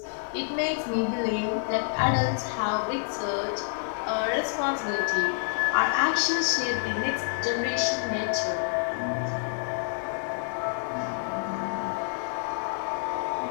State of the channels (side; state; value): right; silent; digital silence